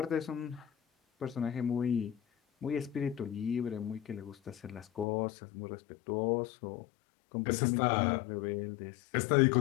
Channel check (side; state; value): right; drops out; at 5.1 s